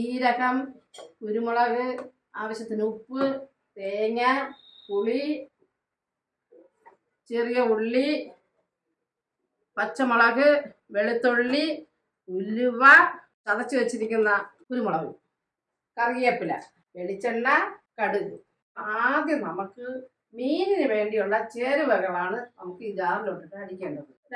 കുരുമുളക്, ആവശ്യത്തിന് ഉപ്പ്, തേങ്ങ, പുളി, ചെറിയ ഉള്ളി, പച്ചമുളക്, വെളുത്തുള്ളി, ഉലുവ, ചതച്ച് വെച്ചിരിക്കുന്ന കുരുമുളക്, കറിവേപ്പില, വെളിച്ചെണ്ണ, കടുക്. ആദ്യം നമുക്ക് മീനിന് വേണ്ടിയുള്ള ചേരുവകളാണ് നമുക്ക് ഈ ജാറിലോട്ടിട്ട് അടിക്കേണ്ടത്.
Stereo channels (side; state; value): both; identical; correlation 1.00